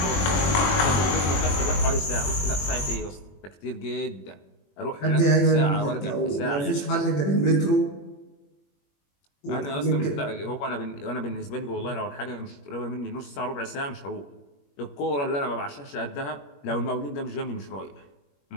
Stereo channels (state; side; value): late; right; 21 ms